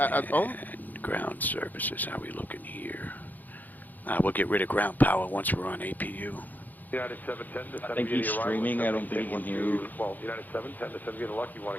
home? And ground services, how we looking here? We'll get rid of ground power once we're on APU. United 710 to I think he's streaming. I don't think he can hear you. Well, United 710 to send you the lucky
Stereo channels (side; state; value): right; late; 0.084 ms